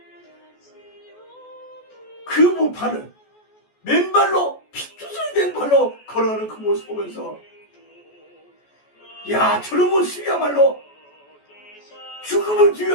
그 무판을 맨발로 피투성이 된 발로 걸어가는 그 모습 보면서 야, 저런 모습이야말로 죽음을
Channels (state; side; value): late; right; 14 ms